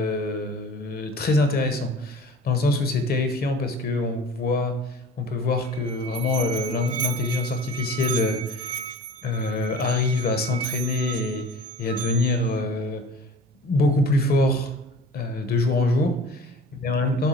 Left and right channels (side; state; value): both; normal; correlation 0.42